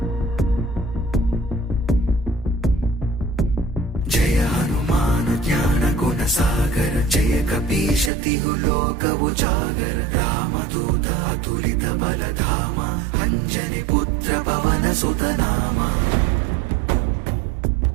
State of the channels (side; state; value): left; drops out; at 8.1 s